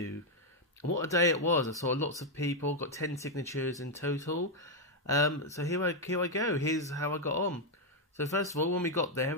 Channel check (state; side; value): normal; both; correlation 0.01